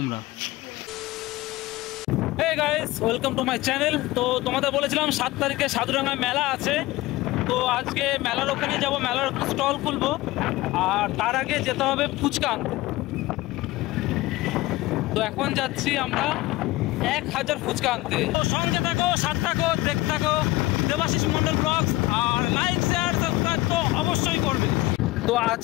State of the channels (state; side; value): quieter; right; 18.6 dB